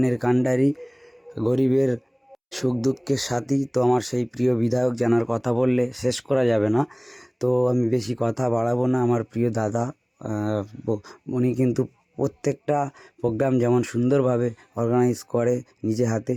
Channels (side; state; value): both; identical; correlation 1.00